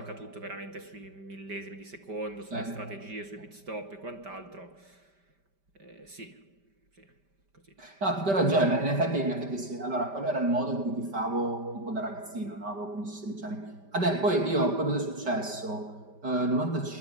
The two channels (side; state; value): left; late; 5.1 ms